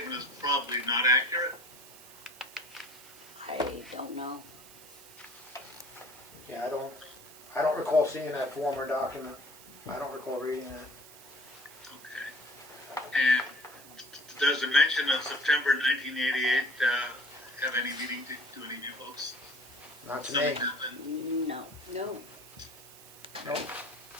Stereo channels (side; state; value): right; noise; hiss, 19 dB below the sound